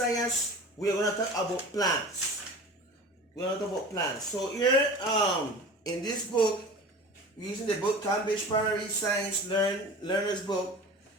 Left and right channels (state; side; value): normal; both; correlation 0.37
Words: we're gonna talk about plants. We're gonna talk about plants. So here, in this book, we're using the book Cambridge Primary Science Learner's Book.